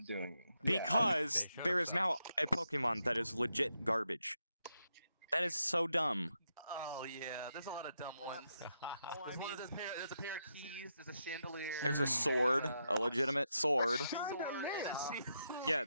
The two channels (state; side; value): inverted; both; correlation -0.83